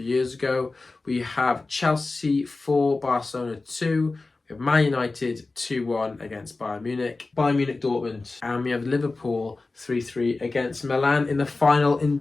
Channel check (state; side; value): quieter; right; 3.5 dB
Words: years ago. We have Chelsea 4, Barcelona 2. We have Man United 2-1 against Bayern Munich. Bayern Munich Dortmund. And we have Liverpool 3-3 against Milan in the final in